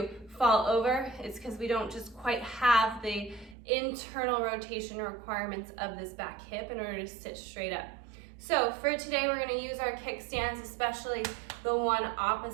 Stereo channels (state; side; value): drops out; left; at 3.6 s